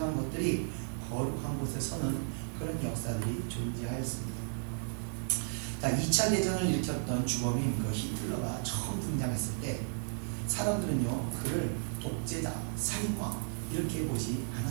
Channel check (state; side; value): silent; left; digital silence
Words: 것들이 거룩한 곳에 서는 그런 역사들이 존재하였습니다. 자, 2차 대전을 일으켰던 주범인 그 히틀러가 처음 등장했을 때 사람들은요 그를 독재자, 살인마 이렇게 보지